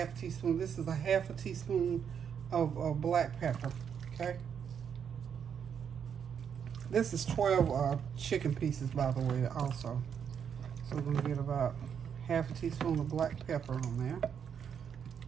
teaspoon. This is a half a teaspoon of black pepper, okay? This is 12 chicken pieces, by the way, also. So we're going to get about half a teaspoon of black pepper on there.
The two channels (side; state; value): left; quieter; 7.7 dB